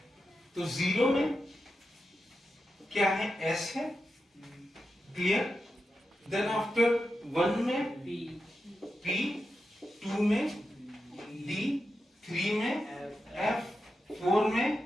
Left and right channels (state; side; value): normal; both; correlation 0.89